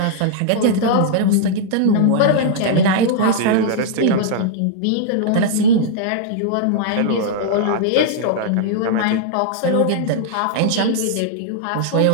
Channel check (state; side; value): different; both; correlation -0.01